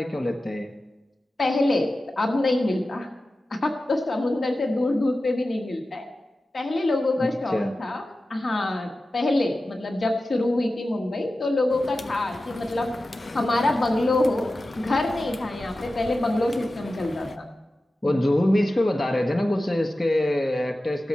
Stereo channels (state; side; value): normal; both; correlation 0.94